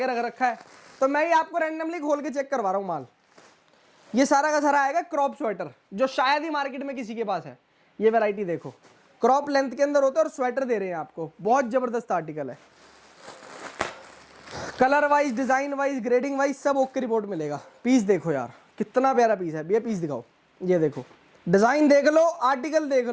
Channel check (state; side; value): identical; both; correlation 1.00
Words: रख रखा है, तो मैं ही आपको रैंडमली खोल के चेक करवा रहा हूँ माल। ये सारा का सारा आएगा क्रॉप स्वेटर, जो शायद ही मार्केट में किसी के पास है। ये वैरायटी देखो, क्रॉप लेंथ के अंदर होता है और स्वेटर दे रहे हैं आपको, बहुत जबरदस्त आर्टिकल है। Colour wise, design wise, grading wise सब ओके रिपोर्ट मिलेगा। पीस देखो यार, कितना प्यारा पीस है। ये पीस दिखाओ, ये देखो, डिजाइन देख लो, आर्टिकल देख